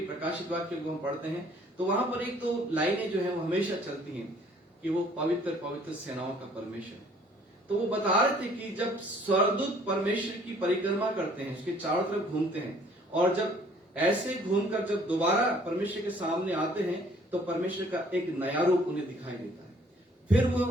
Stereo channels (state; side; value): normal; both; correlation 0.58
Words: प्रकाशित वाक्य को हम पढ़ते हैं तो वहां पर एक तो लाइनें जो है वो हमेशा चलती हैं कि वो पवित्र पवित्र सेनाओं का परमेश्वर है। तो वो बता रहे थे कि जब स्वर्गदूत परमेश्वर की परिक्रमा करते हैं, उसके चारों तरफ घूमते हैं, और जब ऐसे घूमकर जब दोबारा परमेश्वर के सामने आते हैं तो परमेश्वर का एक नया रूप उन्हें दिखाई देता है। फिर